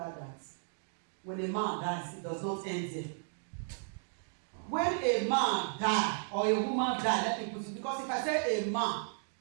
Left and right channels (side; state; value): left; silent; digital silence